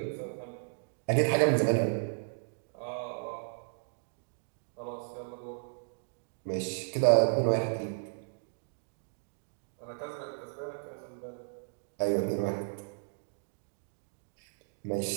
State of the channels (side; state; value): left; silent; digital silence